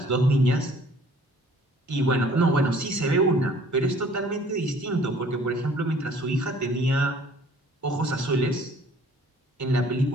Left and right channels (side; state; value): both; normal; correlation 0.54